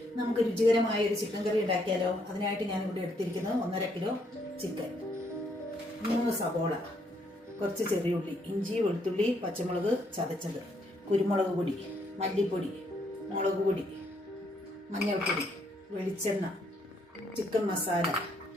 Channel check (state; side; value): normal; both; correlation 0.72